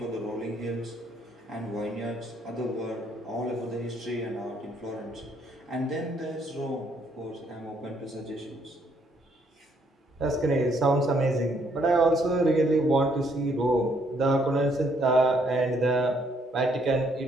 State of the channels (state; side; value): normal; both; correlation 0.69